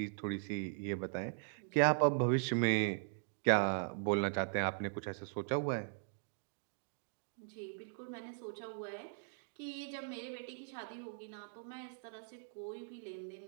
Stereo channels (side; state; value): left; silent; digital silence